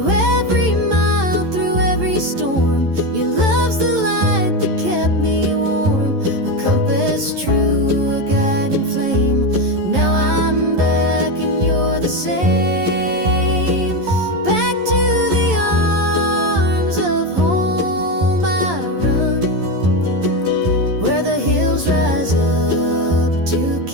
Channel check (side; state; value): left; late; 11 ms